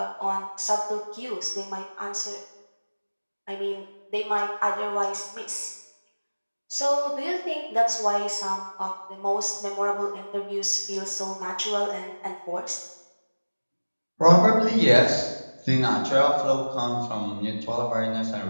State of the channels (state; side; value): inverted; both; correlation -1.00